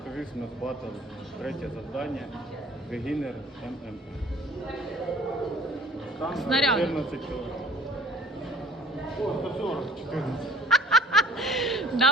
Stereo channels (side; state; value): both; normal; correlation 0.52